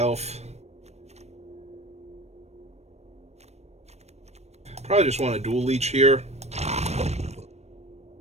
Probably just want a Dual Leech here.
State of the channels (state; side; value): late; left; 0.31 ms